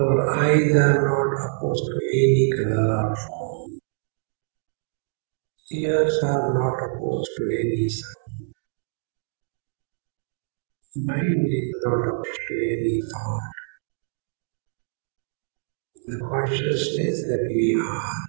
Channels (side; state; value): left; silent; digital silence